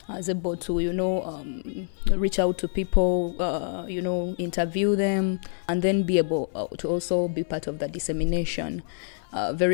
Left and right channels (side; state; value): right; silent; digital silence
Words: I was able to, reach out to people, interview them, and then be able to also be part of the dissemination.